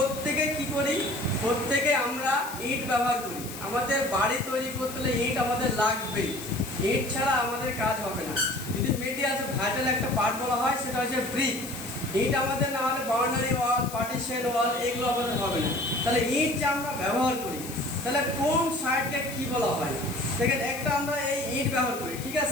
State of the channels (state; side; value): noise; left; hiss, 12 dB below the sound